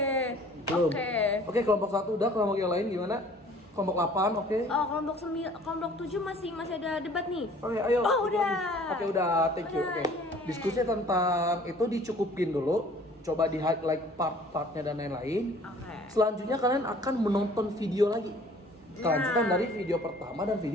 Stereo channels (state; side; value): normal; both; correlation 0.52